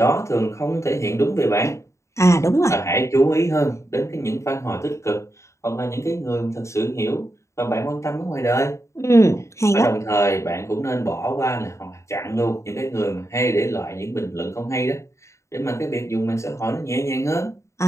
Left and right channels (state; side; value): late; right; 0.14 ms